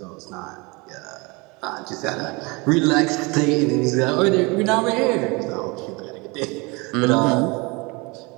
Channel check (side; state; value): left; quieter; 26.8 dB